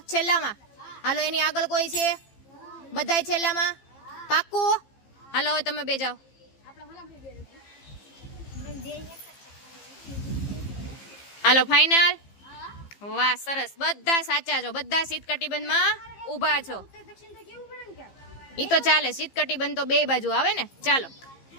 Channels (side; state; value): right; late; 15 ms